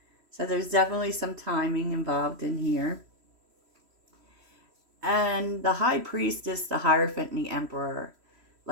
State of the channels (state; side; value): late; left; 3.1 ms